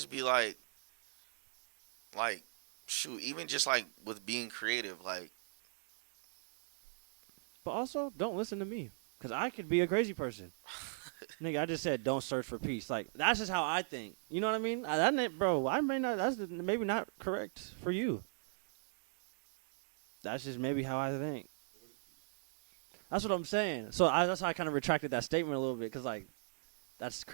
be like shoot, even just like with being creative, like. But also, don't listen to me, cause I could be a crazy person. Nigga, I just said don't search for peace. Like that's just how I think. You know what I mean? Bro, I may not. That's maybe not correct for you. That's just maybe how I think. But what is peace? That's what I'm saying. So that's how I kind of retracted that statement a little bit, cause like that's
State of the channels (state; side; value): silent; left; digital silence